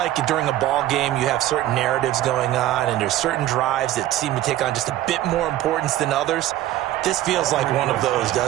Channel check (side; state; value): left; quieter; 13.9 dB